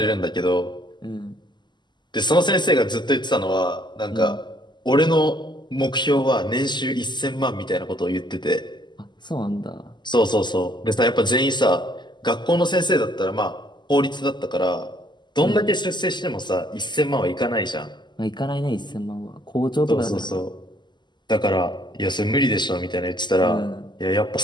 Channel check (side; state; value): right; late; 0.21 ms